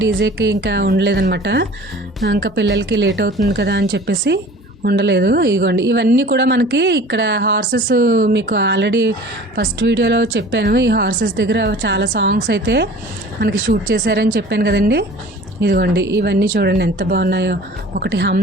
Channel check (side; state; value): both; normal; correlation 0.45